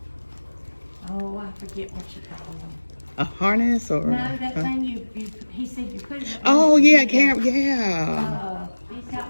I forget what you call them. A harness or? No, that thing he said you put it. Oh yeah, camera. Yeah. He's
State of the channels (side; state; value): both; inverted; correlation -1.00